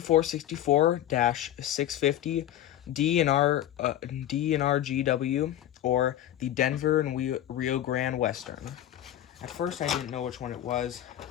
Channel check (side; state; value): right; quieter; 12.2 dB